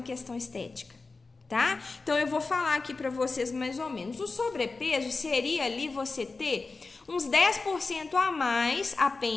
questão estética. Tá? Então, eu vou falar aqui para vocês mais ou menos. O sobrepeso seria ali você ter uns 10% a mais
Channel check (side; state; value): right; quieter; 3.9 dB